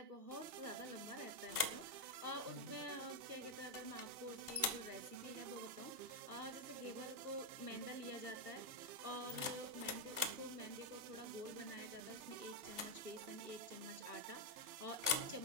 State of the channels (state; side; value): late; left; 2.7 ms